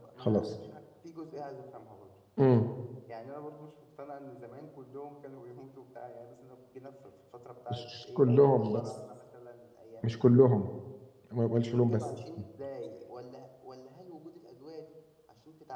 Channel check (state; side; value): identical; both; correlation 1.00